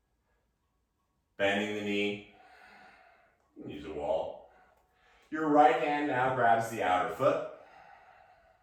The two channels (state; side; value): identical; both; correlation 1.00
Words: Bending the knee. Use a wall. Your right hand now grabs the outer foot.